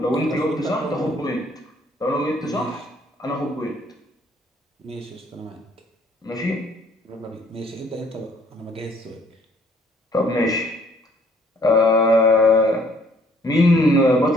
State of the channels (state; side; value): normal; both; correlation 0.61